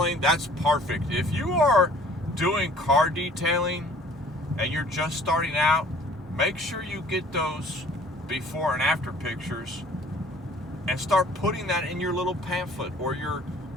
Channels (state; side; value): normal; both; correlation 0.53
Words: that's perfect. If you are doing car detailing and you're just starting out, make sure you get those before and after pictures and start putting that in your little pamphlet or your